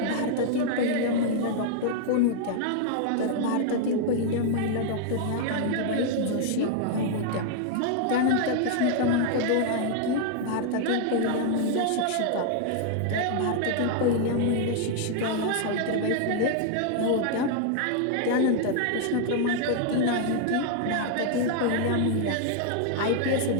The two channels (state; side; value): different; both; correlation 0.00